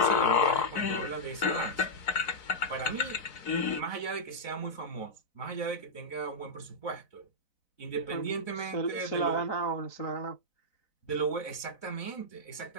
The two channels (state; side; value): late; right; 4.0 ms